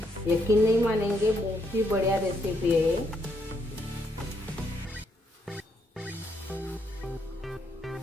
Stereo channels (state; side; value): normal; both; correlation 0.76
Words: यकीन नहीं मानेंगे, बहुत ही बढ़िया रेसिपी है